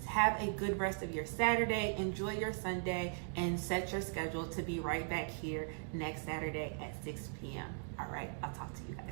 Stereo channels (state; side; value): silent; left; digital silence